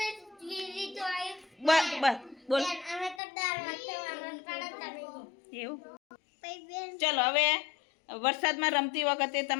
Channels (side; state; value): right; drops out; at 3.2 s